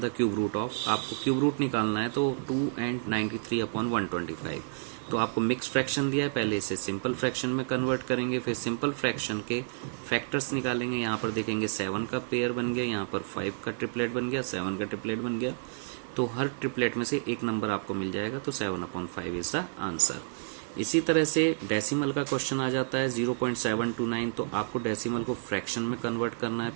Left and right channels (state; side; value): silent; left; digital silence